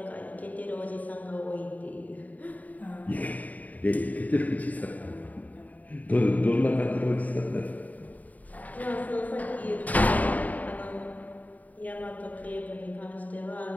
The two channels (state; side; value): late; right; 0.075 ms